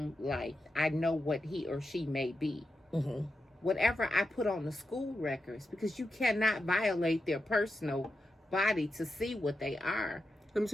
life, I know what he or she may be. Mm-hmm. Whatever I put on the school records, because you cannot violate their personal body to see what they are. Let me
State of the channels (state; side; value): normal; both; correlation 0.88